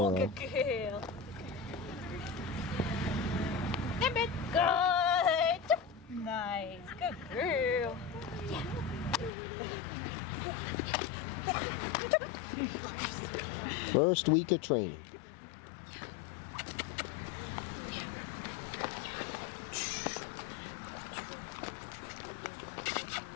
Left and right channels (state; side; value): drops out; right; at 9.3 s